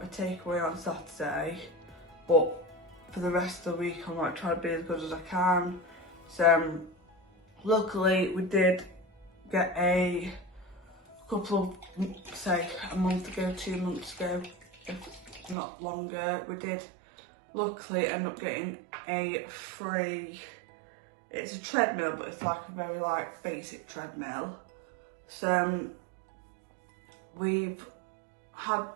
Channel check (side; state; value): left; drops out; at 15.6 s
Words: a takeaway on Saturday, but for the rest of the week I'm like trying to be as good as I can. So luckily we did get a couple of, say a month ago, 2 months ago, if not longer, we did luckily ended up getting a free, it's a treadmill, but it's like a very like basic treadmill. So we've had